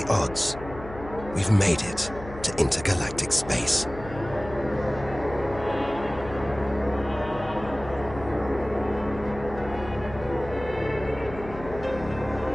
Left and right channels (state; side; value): noise; left; hum, 13 dB below the sound